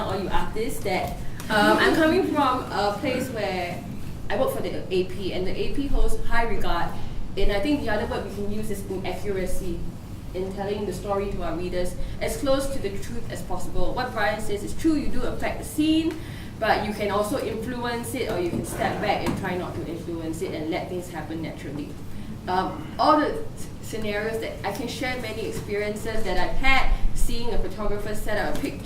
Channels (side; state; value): both; identical; correlation 1.00